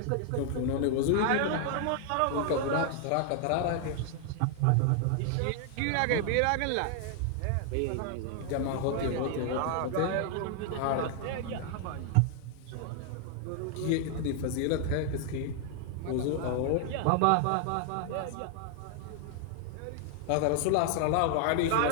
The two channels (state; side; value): different; both; correlation 0.00